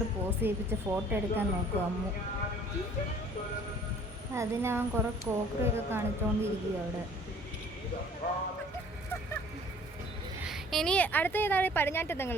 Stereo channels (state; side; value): normal; both; correlation 0.53